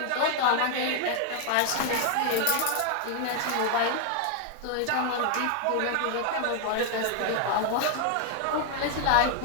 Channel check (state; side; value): different; both; correlation 0.00